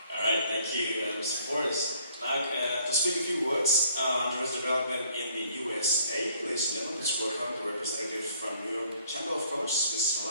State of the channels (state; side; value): inverted; both; correlation -0.61